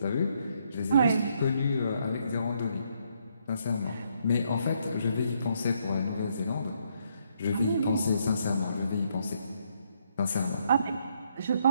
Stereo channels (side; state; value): both; inverted; correlation -0.73